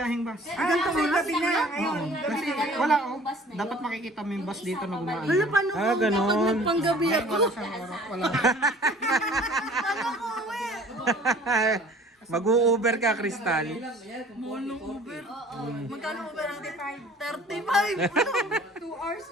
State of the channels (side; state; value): both; normal; correlation 0.49